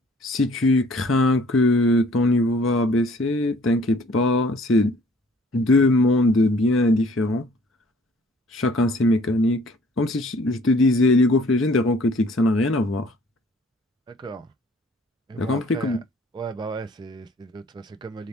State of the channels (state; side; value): normal; both; correlation 0.56